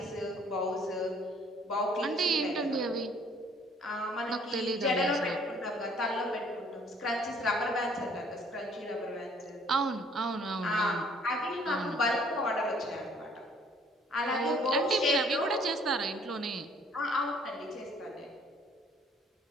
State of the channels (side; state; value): both; normal; correlation 0.59